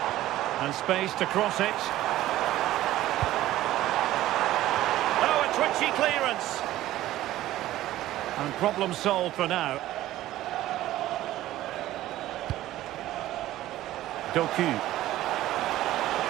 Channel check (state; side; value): quieter; left; 14.8 dB